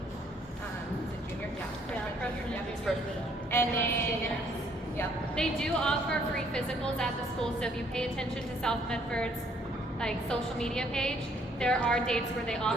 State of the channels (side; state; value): both; normal; correlation 0.64